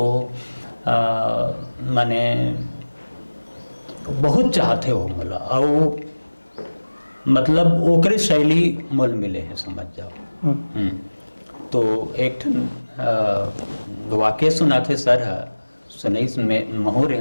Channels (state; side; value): inverted; both; correlation -1.00